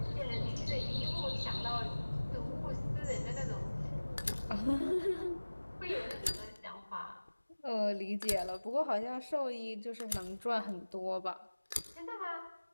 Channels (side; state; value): both; inverted; correlation -1.00